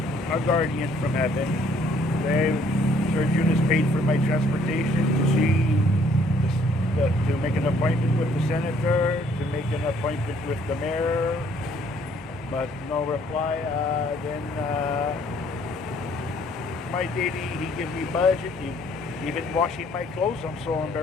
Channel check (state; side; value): normal; both; correlation 0.63